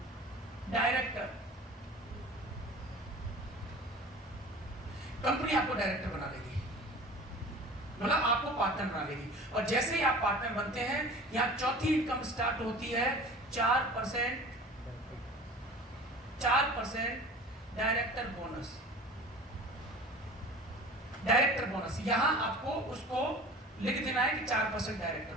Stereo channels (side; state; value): both; normal; correlation 0.41